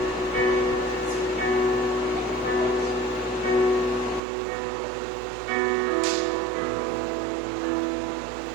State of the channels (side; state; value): left; drops out; at 4.2 s